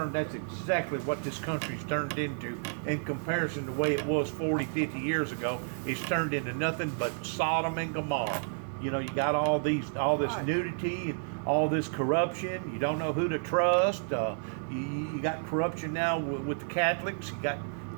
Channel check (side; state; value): left; silent; 57 dB below the other